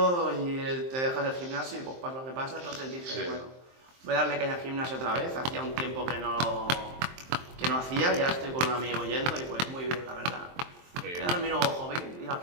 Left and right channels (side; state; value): left; late; 23 ms